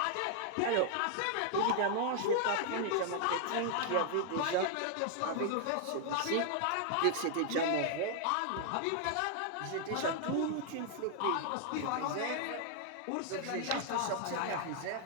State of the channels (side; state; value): both; different; correlation 0.00